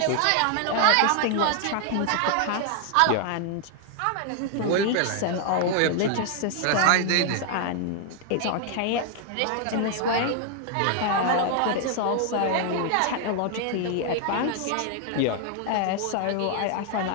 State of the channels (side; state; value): both; different; correlation 0.00